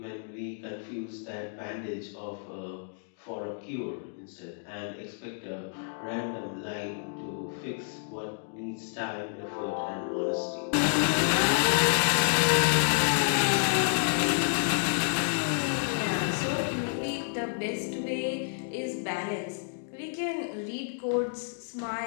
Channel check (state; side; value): silent; right; digital silence